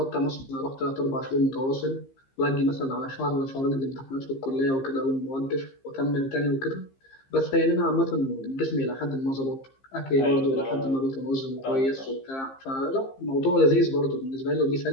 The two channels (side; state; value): right; late; 15 ms